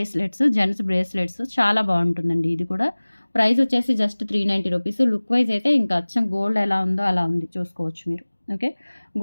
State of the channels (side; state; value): both; inverted; correlation -1.00